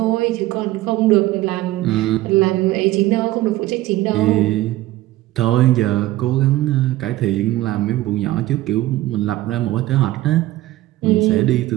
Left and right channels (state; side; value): quieter; left; 16.4 dB